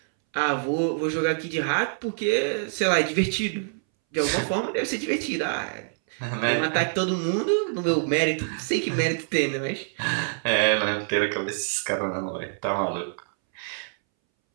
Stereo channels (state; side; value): silent; left; 61 dB below the other